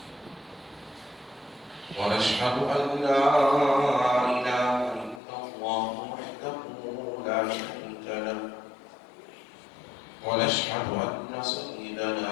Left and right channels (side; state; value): right; drops out; at 5.2 s